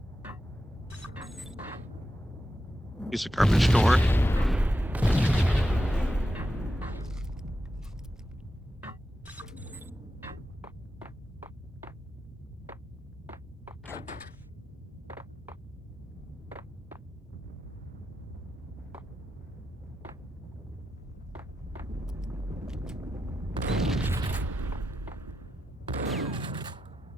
Piece of garbage door.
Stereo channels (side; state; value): both; normal; correlation 0.88